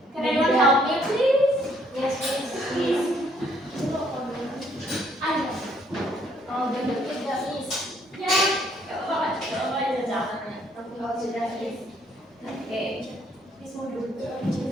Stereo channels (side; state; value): both; normal; correlation 0.66